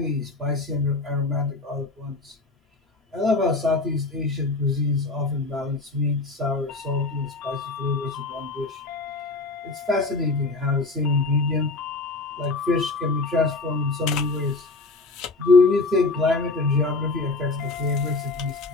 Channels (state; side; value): quieter; right; 3.4 dB